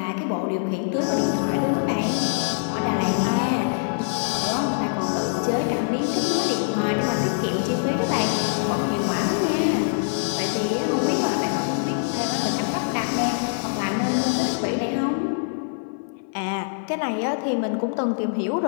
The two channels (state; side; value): silent; right; 58 dB below the other